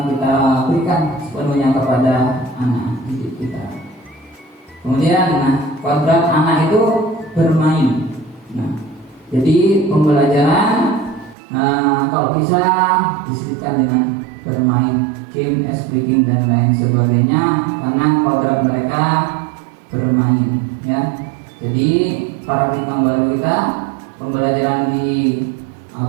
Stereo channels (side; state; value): left; drops out; at 11.4 s